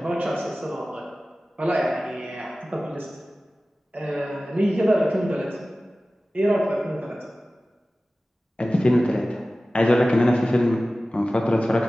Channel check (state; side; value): normal; both; correlation 0.96